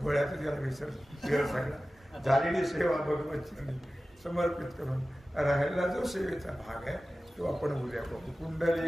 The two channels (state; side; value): normal; both; correlation 0.96